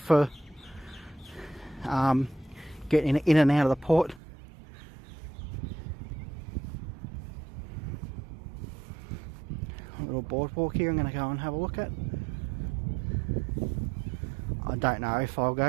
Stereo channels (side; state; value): left; drops out; at 4.2 s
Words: getting in and out of the port. Little boardwalk here I'm going to go and have a look at. I don't know if I'll